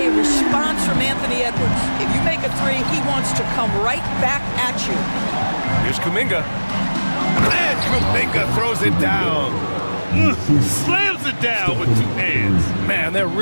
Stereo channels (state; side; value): inverted; both; correlation -1.00